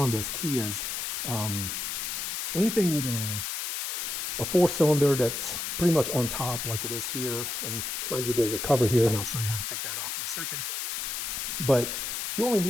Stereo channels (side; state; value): left; noise; hiss, 3 dB below the sound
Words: Kias, anything with a 4-cylinder that's pretty much on top like it is here. And mind you, there's a cover here and I'll show you how to take that off in a second. But you only